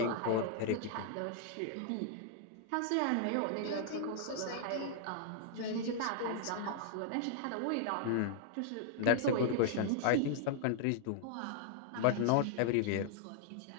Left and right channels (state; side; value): different; both; correlation -0.01